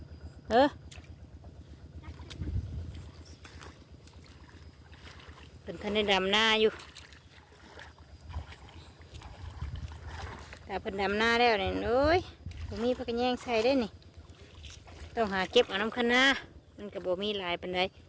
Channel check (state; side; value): identical; both; correlation 1.00